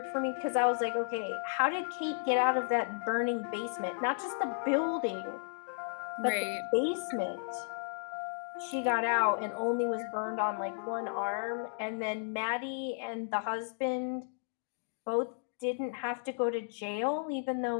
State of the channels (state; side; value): silent; right; digital silence